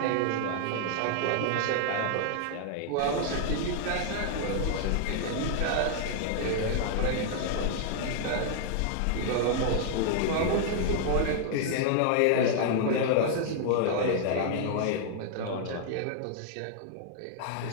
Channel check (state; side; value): different; both; correlation 0.00